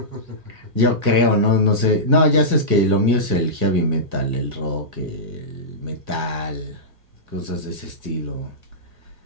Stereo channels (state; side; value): late; left; 1.6 ms